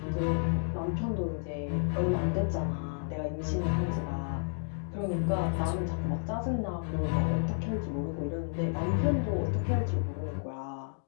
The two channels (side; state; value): right; silent; digital silence